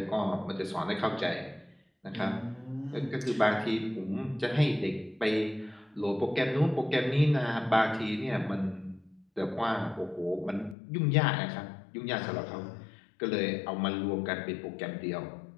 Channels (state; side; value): drops out; right; at 10.8 s